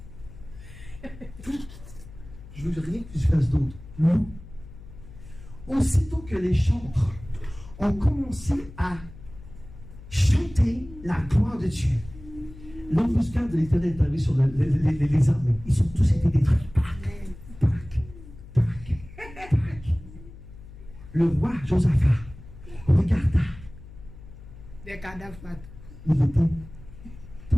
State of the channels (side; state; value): left; noise; hum, 17 dB below the sound